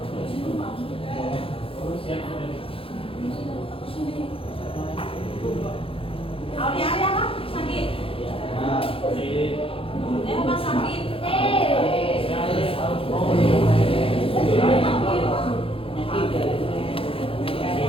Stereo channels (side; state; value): right; late; 0.27 ms